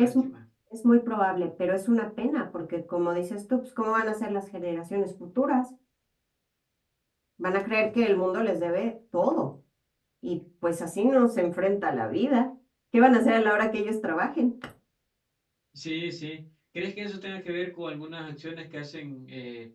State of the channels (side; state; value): both; identical; correlation 1.00